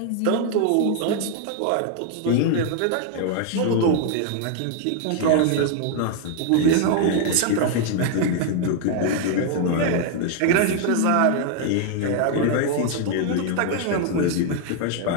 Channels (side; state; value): both; different; correlation 0.00